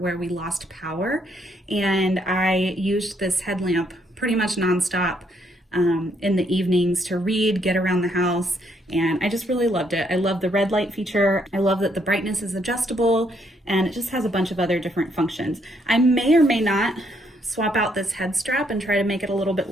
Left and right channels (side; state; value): both; normal; correlation 0.72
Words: where we lost power, and I used this headlamp pretty much nonstop in the evenings to read, get around the house, and I just really loved it. I love the red light feature. I love that the brightness is adjustable, and it just has a bunch of other different functions. I may or may not swap out this head strap and try to make it a little bit